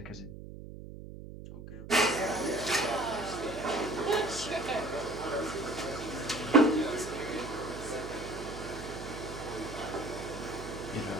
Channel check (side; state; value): right; noise; hum, 12 dB below the sound